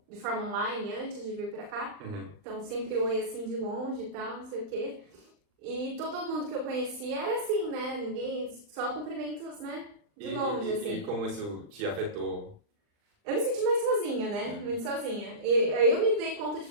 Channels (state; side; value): late; left; 39 ms